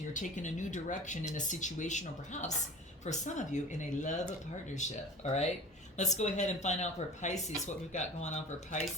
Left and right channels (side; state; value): both; normal; correlation 0.39